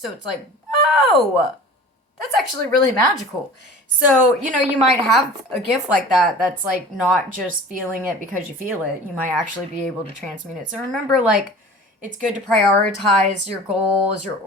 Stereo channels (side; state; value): both; normal; correlation 0.40